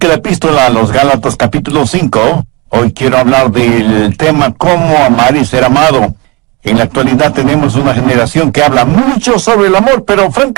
la epístola a los Gálatas capítulo 5. Hoy quiero hablar del tema Cómo amar y ser amado. En la actualidad tenemos una generación que habla mucho sobre el amor, pero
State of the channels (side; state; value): left; quieter; 26.6 dB